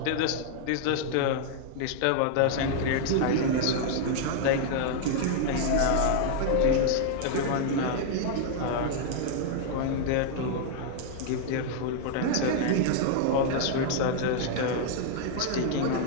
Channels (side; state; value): both; different; correlation -0.01